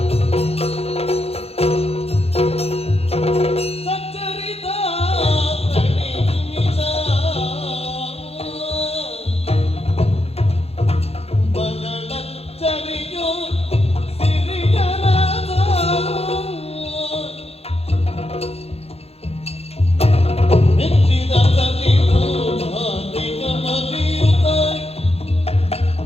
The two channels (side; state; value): right; late; 0.29 ms